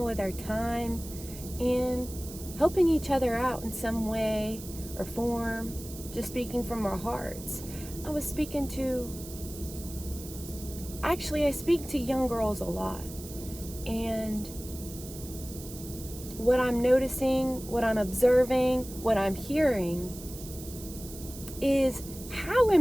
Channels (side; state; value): right; noise; hiss, 14 dB below the sound